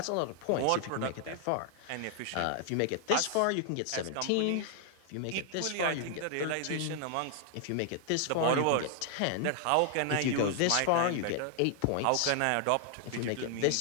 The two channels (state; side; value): different; both; correlation 0.00